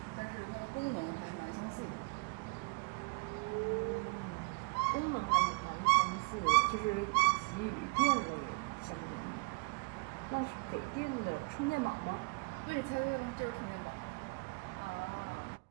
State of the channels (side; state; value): left; quieter; 32.0 dB